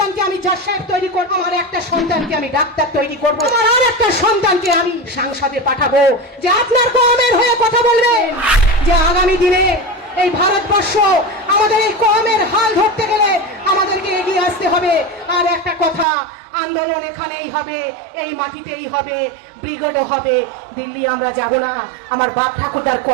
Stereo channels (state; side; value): drops out; left; at 16.1 s